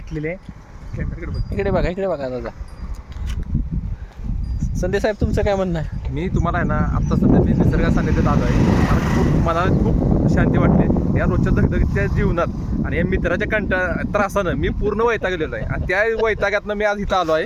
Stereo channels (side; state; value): both; identical; correlation 1.00